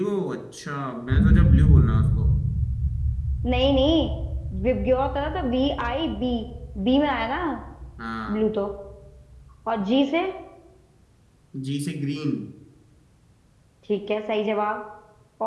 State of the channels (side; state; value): both; identical; correlation 1.00